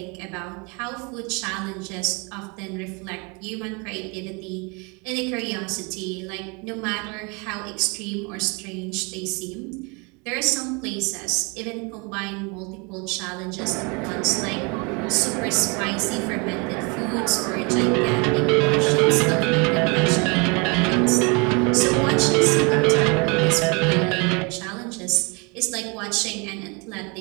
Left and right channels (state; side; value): quieter; left; 30.7 dB